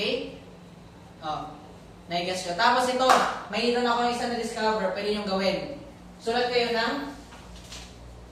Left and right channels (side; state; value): both; identical; correlation 1.00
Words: Naigas ko. Tapos ito, mayroon ako isa na discover. Pwede nyo gawin. Sulat kayo ng